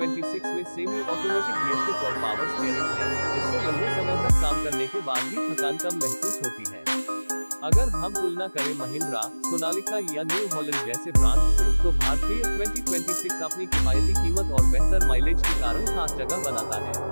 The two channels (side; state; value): both; inverted; correlation -1.00